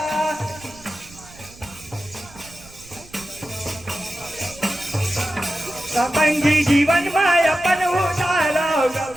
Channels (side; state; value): right; noise; rumble, 21 dB below the sound